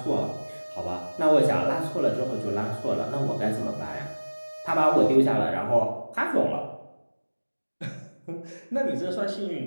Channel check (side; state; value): both; inverted; correlation -1.00